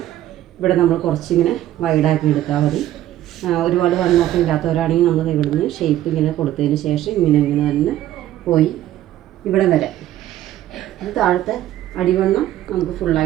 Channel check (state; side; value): quieter; left; 13.3 dB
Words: ഇവിടെ നമ്മൾ കുറച്ചിങ്ങനെ വൈഡാക്കി എടുത്താൽ മതി. ഒരുപാട് വണ്ണമൊക്കെ ഇല്ലാത്തവരാണെങ്കിൽ നമ്മൾ ഇവിടുന്ന് ഷേപ്പ് ഇങ്ങനെ കൊടുത്തതിന് ശേഷം ഇങ്ങനെ തന്നെ പോയി ഇവിടെ വരെ ഇത് താഴത്തെ അടിവണ്ണം നമുക്ക്